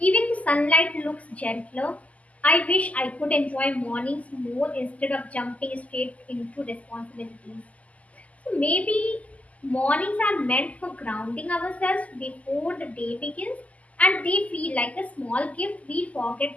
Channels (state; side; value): late; right; 0.072 ms